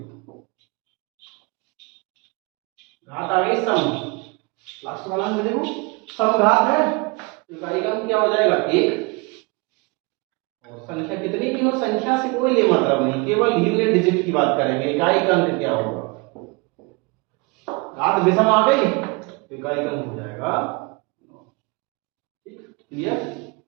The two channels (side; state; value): left; quieter; 27.9 dB